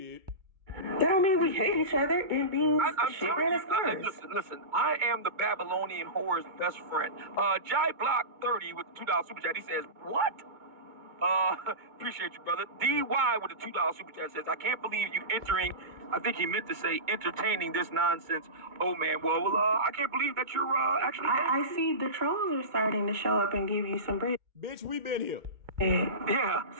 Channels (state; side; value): late; left; 2.2 ms